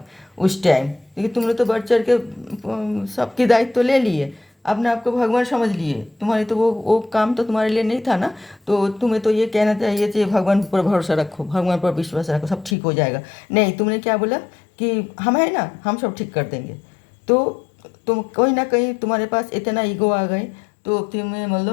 उस टाइम, क्योंकि तुमने तो बढ़ चढ़ के सबकी दायित्व तो ले लिए, अपने आप को भगवान समझ लिए, तुम्हारे तो वो काम तो तुम्हारे लिए नहीं था ना, तो तुम्हें तो ये कहना चाहिए कि भगवान पर भरोसा रखो, भगवान पर विश्वास रखो, सब ठीक हो जाएगा। नहीं, तुमने क्या बोला कि हम है ना, हम सब ठीक कर देंगे, तो तुम कहीं ना कहीं तुम्हारे पास इतना ईगो आ गए, तो तुम्हें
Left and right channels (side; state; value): right; drops out; at 12.8 s